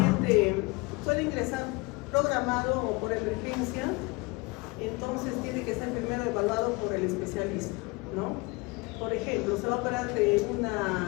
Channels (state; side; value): quieter; right; 25.9 dB